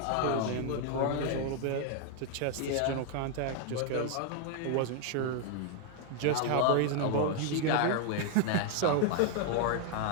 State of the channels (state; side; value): different; both; correlation 0.00